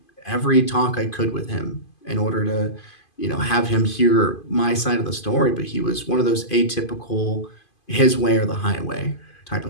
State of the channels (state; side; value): late; right; 2.5 ms